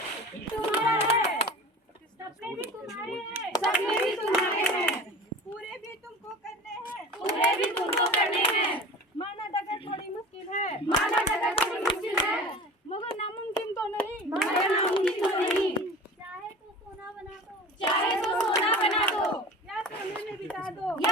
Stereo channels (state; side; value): normal; both; correlation 0.37